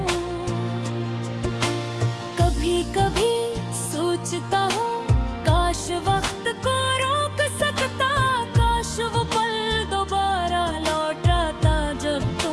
कभी सोचता हूँ काश वक्त को रोक सकता, काश वो पल दोबारा लौट आता जब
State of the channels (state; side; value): identical; both; correlation 1.00